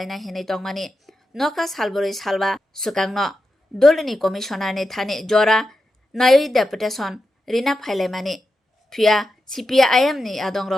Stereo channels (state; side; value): normal; both; correlation 0.89